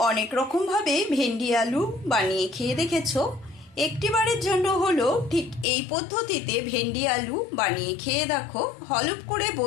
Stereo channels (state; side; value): drops out; right; at 5.7 s